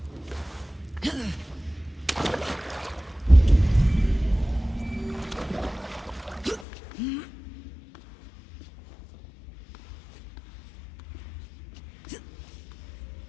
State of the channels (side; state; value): right; drops out; at 6.7 s